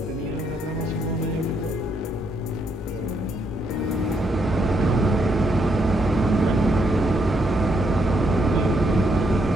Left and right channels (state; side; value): normal; both; correlation 0.76